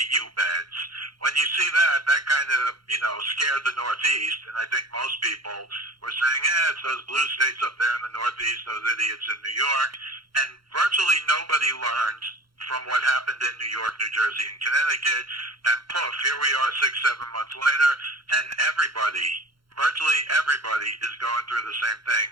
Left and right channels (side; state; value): left; late; 0.73 ms